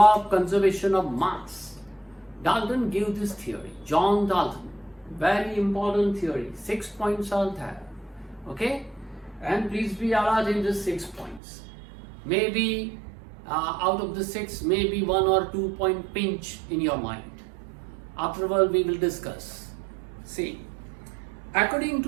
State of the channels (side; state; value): left; drops out; at 11.4 s